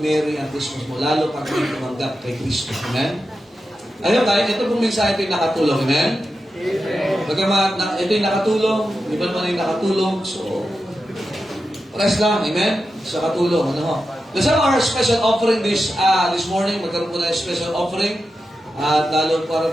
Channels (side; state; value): both; normal; correlation 0.90